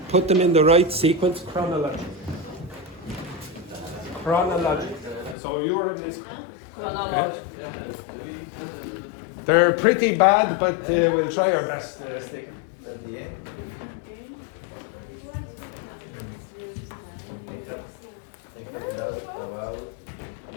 Put them in the right sequence chronologically. So you're in this. Okay? They're pretty bad, but we'll try our best, Stick. At the end. They find out about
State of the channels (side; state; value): right; drops out; at 5.4 s